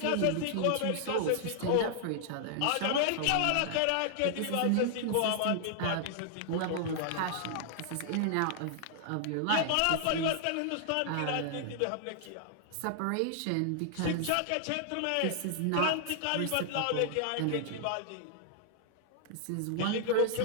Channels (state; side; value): different; both; correlation 0.00